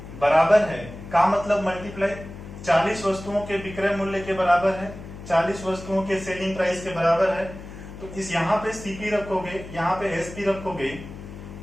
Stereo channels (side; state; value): left; noise; hum, 13 dB below the sound